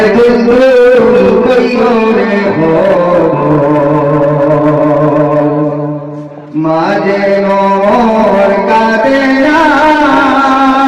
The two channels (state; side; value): identical; both; correlation 1.00